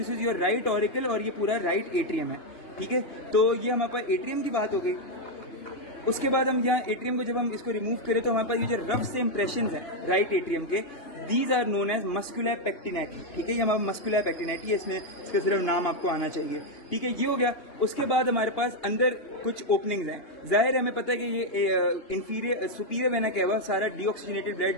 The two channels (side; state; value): right; late; 2.9 ms